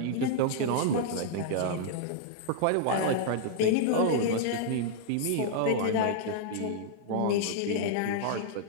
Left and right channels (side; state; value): both; different; correlation -0.01